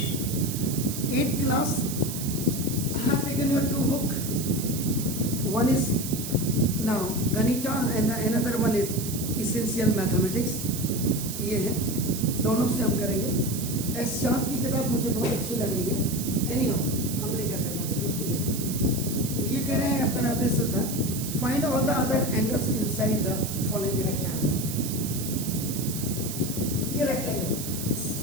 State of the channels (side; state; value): right; noise; hiss, 7 dB below the sound